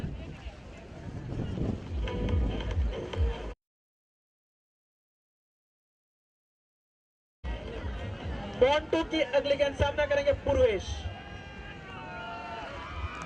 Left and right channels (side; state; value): both; identical; correlation 1.00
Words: मोंटू की अगली गेंद सामना करेंगे पूर्वेश।